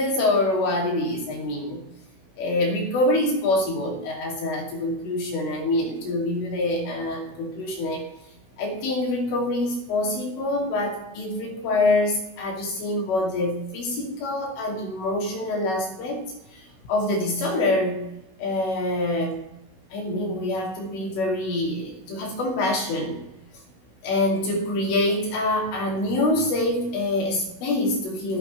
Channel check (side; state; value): right; late; 16 ms